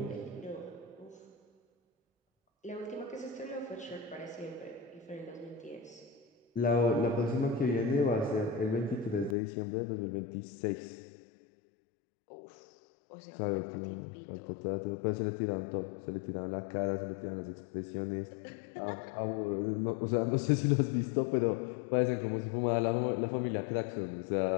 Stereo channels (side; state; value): right; drops out; at 9.3 s